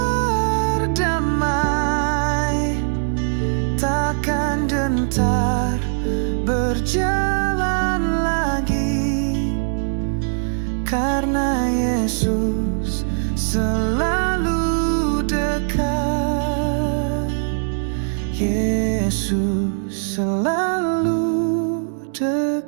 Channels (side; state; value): left; silent; digital silence